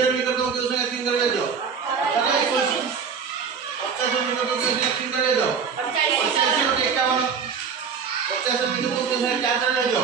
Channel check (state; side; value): quieter; left; 6.3 dB